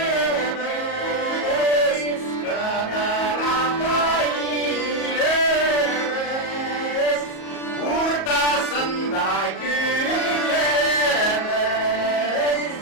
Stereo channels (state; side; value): late; right; 38 ms